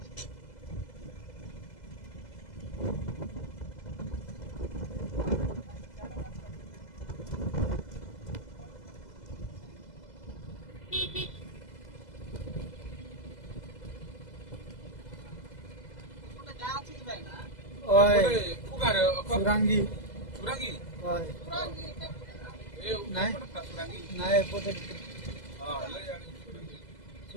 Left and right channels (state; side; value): late; right; 2.0 ms